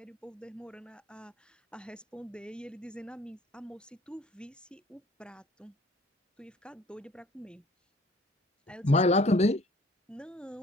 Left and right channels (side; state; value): both; normal; correlation 0.54